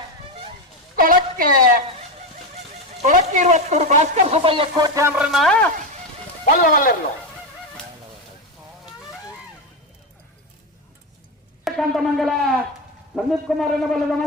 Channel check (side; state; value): both; normal; correlation 0.13